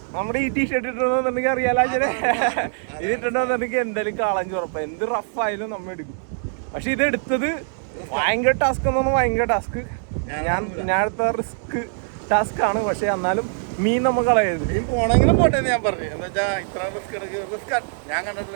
നമ്മുടെ ഈ ടീഷർട്ട് ഇട്ടിട്ടുണ്ടെന്നുണ്ടെങ്കിൽ അറിയാലോ, ഇത് ഇട്ടിട്ടുണ്ടെന്നുണ്ടെങ്കിൽ എന്തായാലും കാളാഞ്ചി ഉറപ്പാണ്. എന്ത് റഫായാലും നമ്മൾ എടുക്കും. പക്ഷെ ഇത് എടുത്തത് ഭയങ്കര ടാസ്ക് എന്ന് പറഞ്ഞാൽ ഭയങ്കര ടാസ്ക്. ഞാൻ എടുത്ത റിസ്ക് ടാസ്ക് ആണ്. പക്ഷെ എന്നാലും മീൻ നമ്മൾ കളയരുത്. മീൻ പോണെങ്കിലും പോട്ടെ ഞാൻ പറഞ്ഞു. എന്താ വെച്ചാൽ ഇത്ര റിസ്ക് ഞാൻ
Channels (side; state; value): left; silent; digital silence